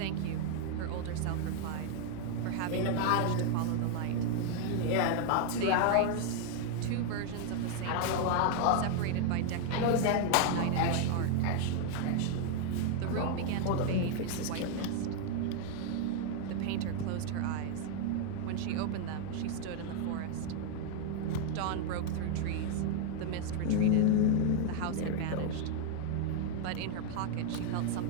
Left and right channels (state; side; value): different; both; correlation 0.00